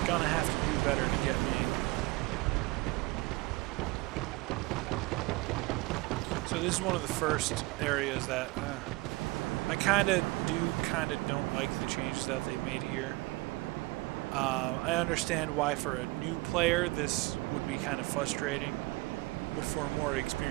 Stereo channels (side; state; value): left; quieter; 22.5 dB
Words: Gonna have to do better to get me. So this is one of the first areas that I kind of don't like the changes that they made here. I understand why for a new player this would be kind of frustrating, but for a more